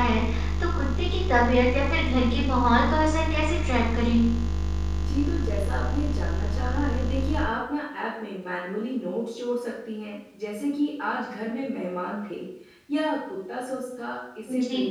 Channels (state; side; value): identical; both; correlation 1.00